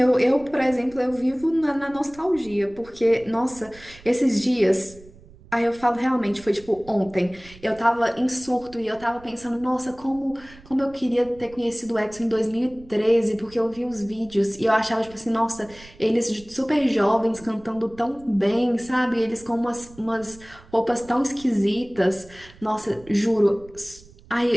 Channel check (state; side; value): noise; right; rumble, 22 dB below the sound